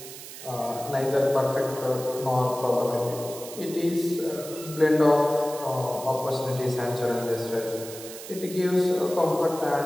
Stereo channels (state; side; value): noise; right; hiss, 13 dB below the sound